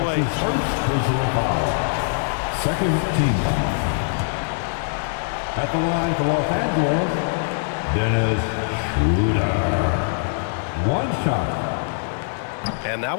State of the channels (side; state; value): right; silent; 64 dB below the other